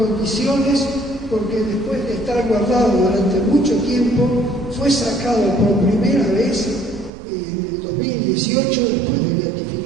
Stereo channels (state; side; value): drops out; left; at 7.1 s